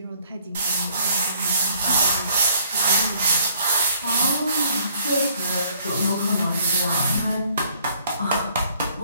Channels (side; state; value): both; inverted; correlation -0.61